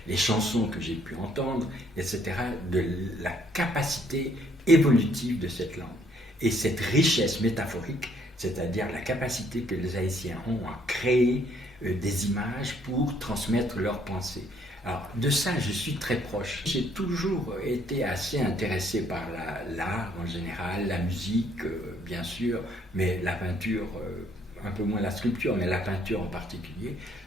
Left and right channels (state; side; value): normal; both; correlation 0.66